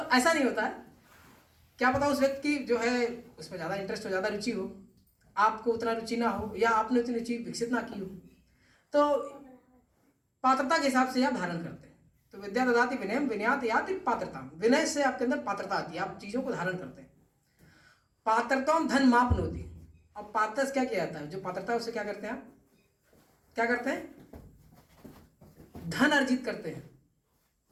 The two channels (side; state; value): both; identical; correlation 1.00